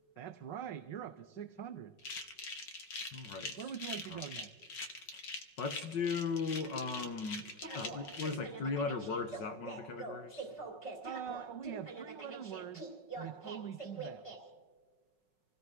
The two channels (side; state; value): right; late; 5.4 ms